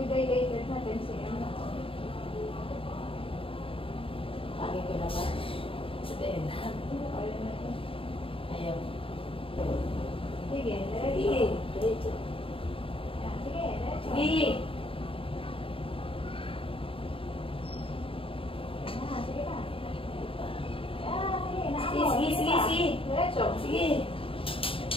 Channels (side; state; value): right; late; 0.26 ms